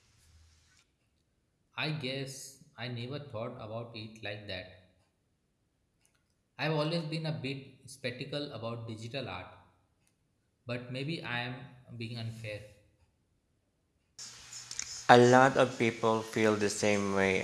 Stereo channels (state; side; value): identical; both; correlation 1.00